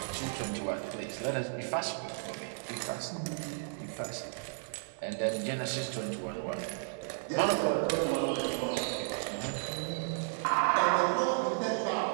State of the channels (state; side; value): silent; left; digital silence